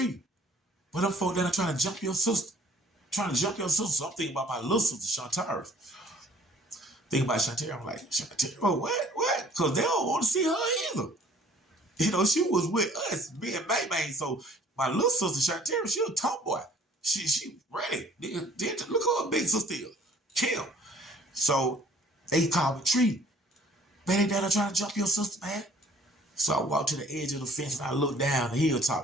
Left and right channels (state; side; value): normal; both; correlation 0.55